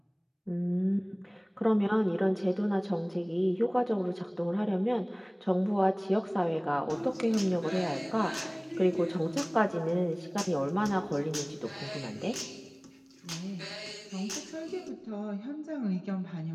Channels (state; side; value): identical; both; correlation 1.00